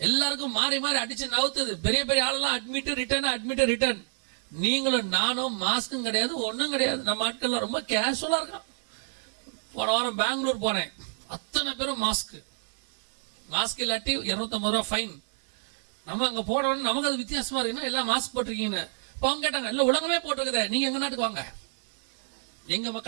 மாறி மாறி அடிச்சு நவுத்துது. பெரிய பெரிய ஆளெல்லாம் அட்மிட் ரிட்டர்ன். நீங்களும் நானும் மாஸ்க்கும் கிடையாது, ஒன்றும் கிடையாது. நம்ம ஆட்கள்லாம் ரொம்ப கேஷுவலா இருக்கான். போன வாரம் பெங்களூர் போனேன். அத்தனை பேரும் மாஸ்க் இல்லாட்டி 250 ரூபா ஃபைன். நம்ம அங்க போனோம்னு நமக்கு அது வித்தியாசமா இருக்குன்னா எல்லாம் மாஸ்க் போட்டிருக்கீங்கன்னு. இப்போ அவங்க கேட்டாங்க, இல்லை உலகமே போட்டிருக்குதே, நீங்க எங்க நாட்டுக்கு வாங்க, எங்க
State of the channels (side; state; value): left; silent; digital silence